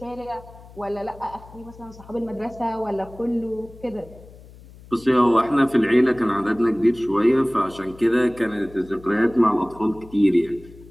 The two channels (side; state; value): left; noise; hum, 21 dB below the sound